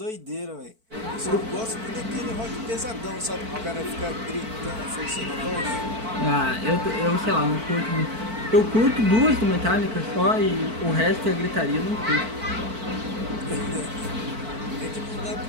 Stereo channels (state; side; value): late; left; 4.5 ms